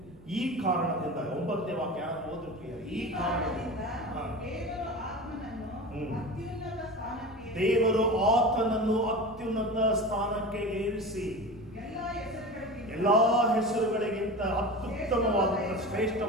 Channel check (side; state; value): right; noise; rumble, 23 dB below the sound